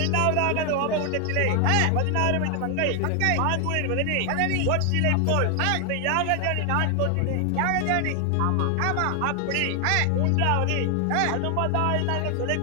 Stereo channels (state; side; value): different; both; correlation 0.00